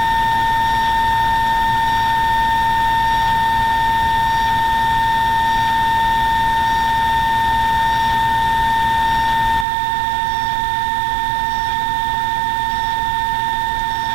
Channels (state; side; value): drops out; left; at 9.7 s